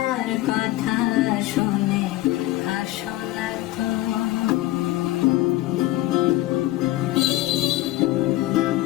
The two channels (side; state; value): right; quieter; 16.8 dB